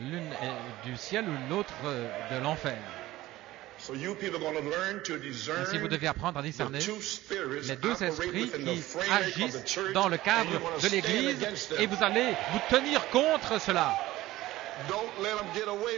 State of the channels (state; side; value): quieter; left; 16.8 dB